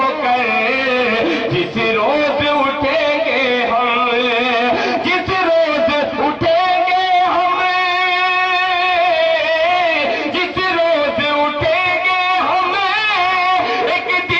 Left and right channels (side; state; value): both; identical; correlation 1.00